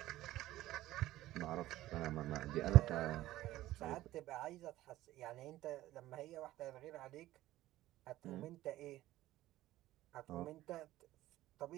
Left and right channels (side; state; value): left; quieter; 15.5 dB